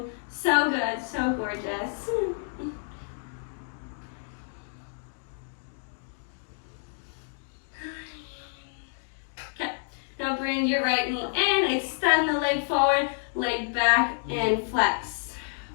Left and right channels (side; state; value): right; silent; digital silence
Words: so good, so gorgeous. Okay, now bring your right knee in, extend the leg forward, leg back, and flex.